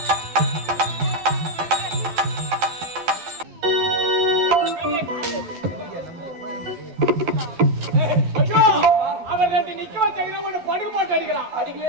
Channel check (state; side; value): late; left; 12 ms